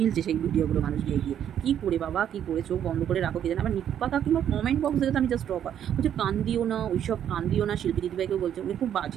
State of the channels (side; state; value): left; quieter; 9.8 dB